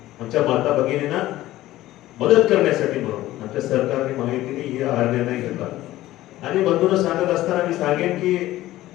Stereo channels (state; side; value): quieter; right; 15.6 dB